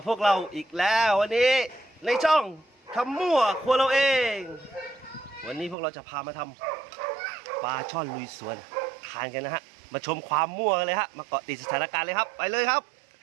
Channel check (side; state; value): left; drops out; at 5.8 s